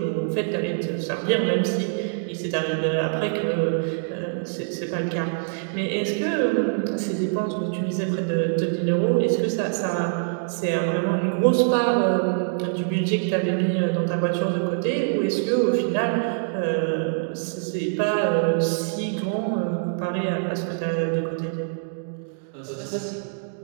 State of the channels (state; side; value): silent; left; digital silence